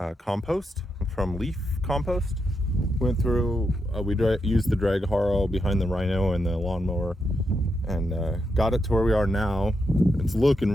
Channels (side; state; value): both; normal; correlation 0.83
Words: compost from leaf compost. Went through, we used the drag Harrow behind the Rhino and the lawnmower and got it to where we are now. It's